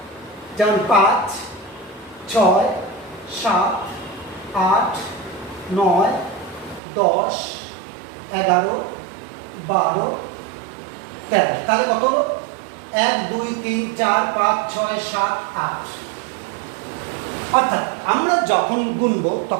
যেমন 5, 6, 7, 8, 9, 10, 11, 12, 13। তাহলে কত হলো? 1, 2, 3, 4, 5, 6, 7, 8। অর্থাৎ আমরা যখন গুনবো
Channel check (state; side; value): drops out; left; at 6.8 s